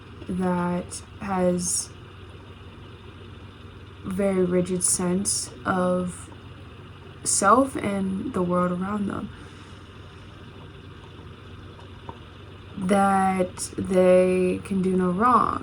that has very rigid sense of self and the world around them, that they can do no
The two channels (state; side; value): identical; both; correlation 1.00